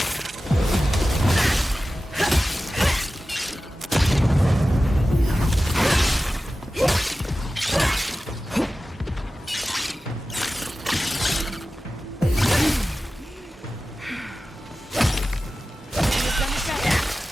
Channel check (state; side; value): normal; both; correlation 0.95